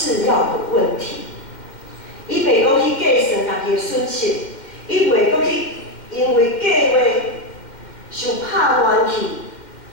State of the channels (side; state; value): right; late; 2.1 ms